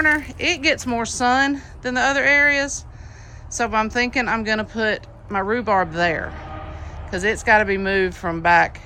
it gets more sun than the other areas. So I'm thinking I'm gonna put my rhubarb there, because it's got to be moved from back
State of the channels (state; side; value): identical; both; correlation 1.00